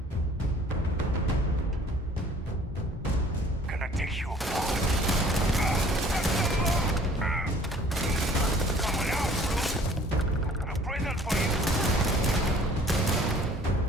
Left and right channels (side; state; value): both; normal; correlation 0.54